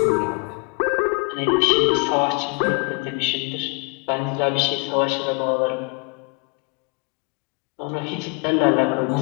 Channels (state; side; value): quieter; right; 32.6 dB